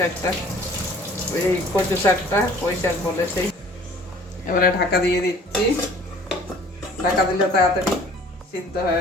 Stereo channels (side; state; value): both; normal; correlation 0.51